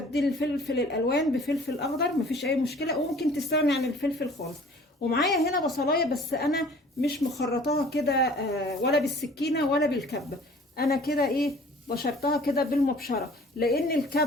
الفلفل الالوان بفلفل اخضر مفيش اي مشكله، وممكن تستغني عن الفلفل خالص. ومعايا هنا بصلايه، بس انا مش مخرطاها كده ولا بالسكينه ولا بالكبه. انا كده بشرتها كده بالمبشره، لان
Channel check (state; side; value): normal; both; correlation 0.50